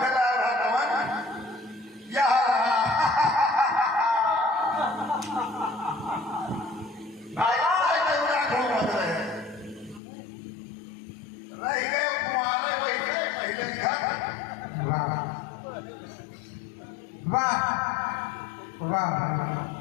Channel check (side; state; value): right; drops out; at 10.0 s